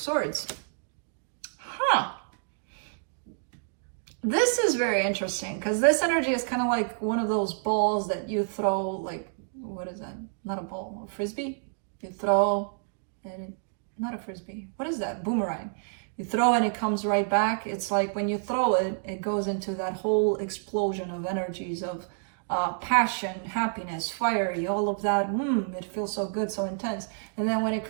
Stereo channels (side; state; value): left; silent; digital silence